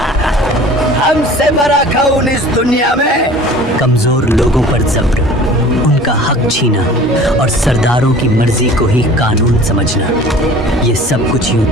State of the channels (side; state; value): both; normal; correlation 0.45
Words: ہم سے بڑا کون اس دنیا میں؟ کمزور لوگوں پر جبر، ان کا حق چھینا اور سرداروں کی مرضی کو ہی قانون سمجھنا، یہ سب کچھ یوں